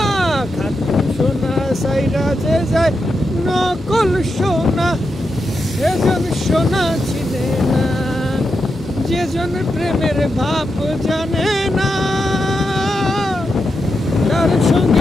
খাঁটি সোনা সাইরা যে যায় নকল সোনা সেজন সোনা চিনে না। যেজন প্রেমের ভাব জানে না তার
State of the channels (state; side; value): normal; both; correlation 0.86